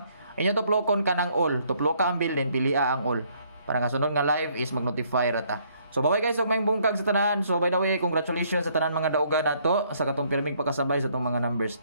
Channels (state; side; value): inverted; both; correlation -0.66